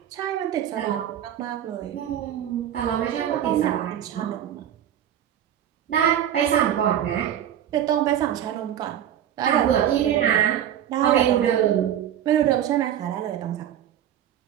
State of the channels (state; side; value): quieter; left; 10.5 dB